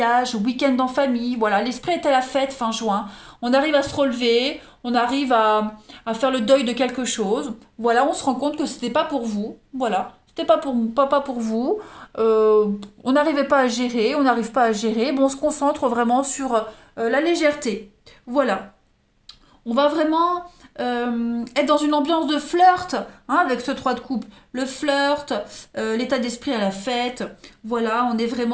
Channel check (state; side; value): identical; both; correlation 1.00